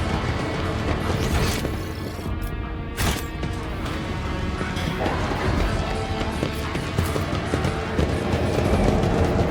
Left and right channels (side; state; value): both; identical; correlation 1.00